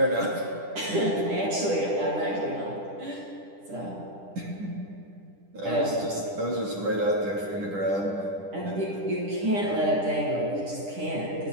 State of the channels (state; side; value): late; left; 10 ms